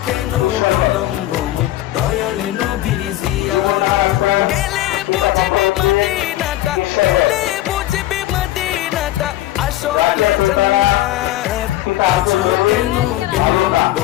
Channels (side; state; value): right; quieter; 15.0 dB